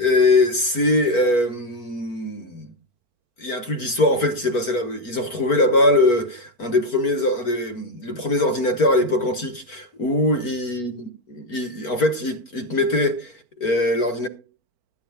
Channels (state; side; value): late; right; 4.5 ms